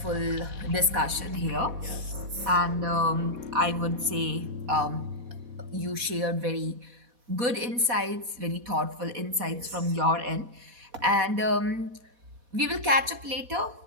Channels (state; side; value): late; left; 4.1 ms